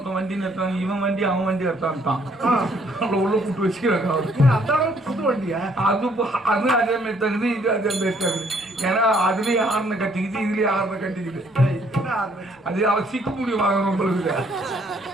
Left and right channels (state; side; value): normal; both; correlation 0.65